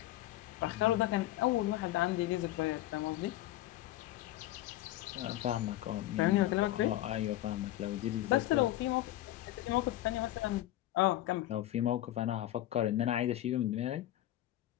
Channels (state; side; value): quieter; right; 14.8 dB